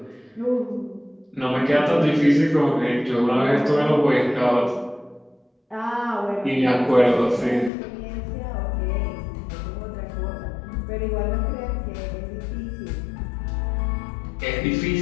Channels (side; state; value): right; drops out; at 7.7 s